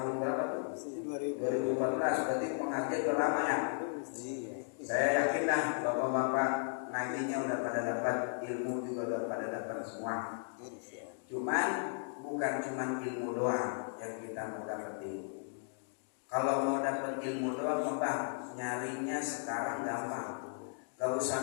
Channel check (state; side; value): silent; right; digital silence